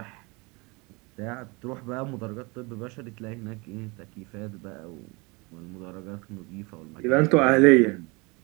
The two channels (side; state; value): left; quieter; 27.3 dB